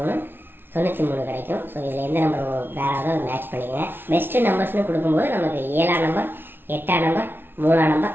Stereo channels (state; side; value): late; left; 0.10 ms